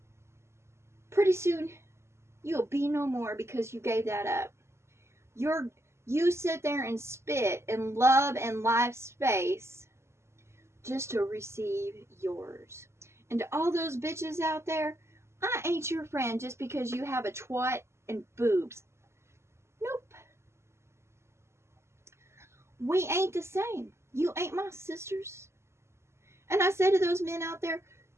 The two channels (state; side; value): late; left; 0.13 ms